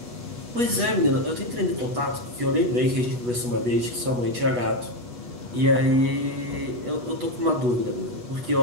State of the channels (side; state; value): left; late; 8.2 ms